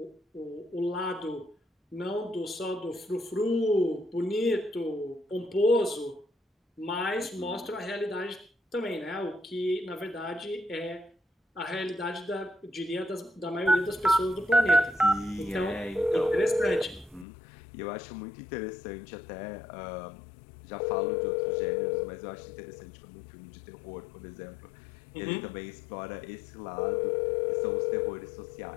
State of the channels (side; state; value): right; drops out; at 17.2 s